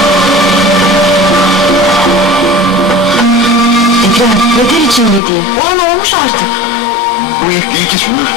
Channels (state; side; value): drops out; right; at 5.2 s